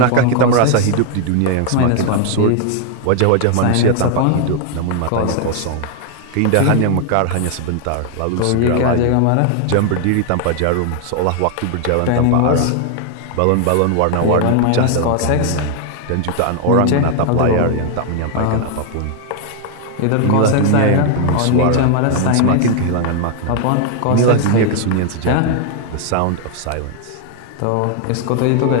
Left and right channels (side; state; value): both; different; correlation 0.00